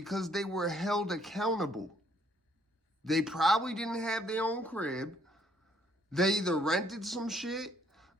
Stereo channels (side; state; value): both; normal; correlation 0.65